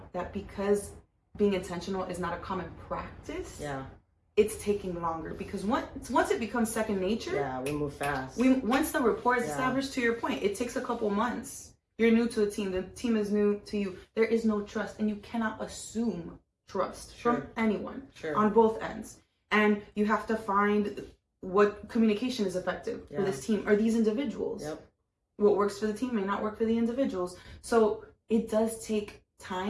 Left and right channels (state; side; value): identical; both; correlation 1.00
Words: that because being intentional is not a common practice, Yeah. it's taking longer. Because once it becomes second nature, Yeah, we move fast. once the rapport is Yeah. established, to your point, it takes a couple months. You're new to a team. The team is new to you. There is no trust, and you cannot assume trust Sure. from anyone Sure. on both ends. And you have to find what communication is effective for Yeah. this team or these individuals. Yep. What works for the team may not work for the individuals. So it does take